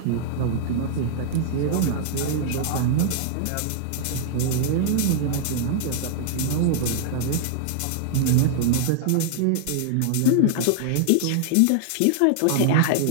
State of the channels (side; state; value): both; different; correlation -0.01